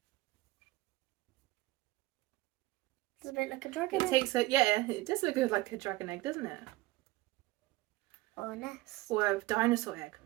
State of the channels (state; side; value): quieter; left; 18.6 dB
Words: Does it look like a dragon egg? It does look like a dragon egg, doesn't it? Or a nest. Or a dinosaur egg.